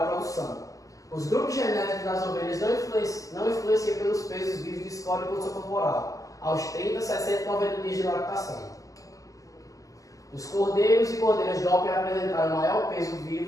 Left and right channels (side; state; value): right; late; 0.16 ms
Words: produção. Os grupos genéticos das ovelhas não influenciam pelos pesos vivos de score e condição corporal aos 30, 60 e 90 dias de lactação. Os cordeiros e cordeiras Doppler apresentaram maior peso